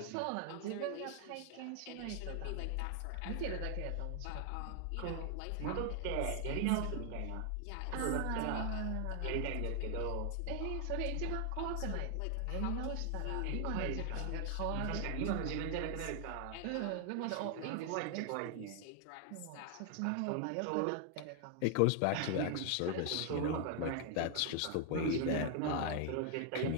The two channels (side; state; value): both; different; correlation 0.00